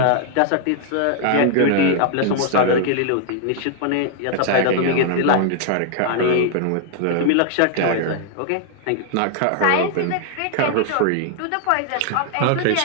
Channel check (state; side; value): different; both; correlation -0.01